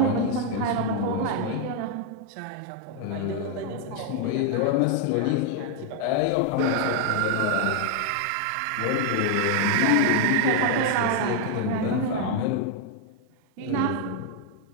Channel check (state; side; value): different; both; correlation 0.00